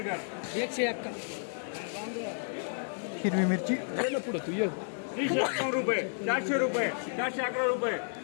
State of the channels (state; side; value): silent; right; digital silence